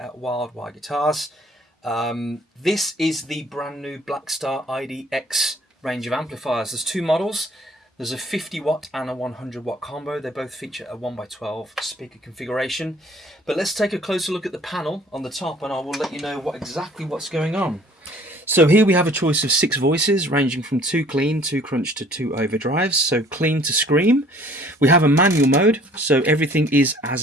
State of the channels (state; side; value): normal; both; correlation 0.55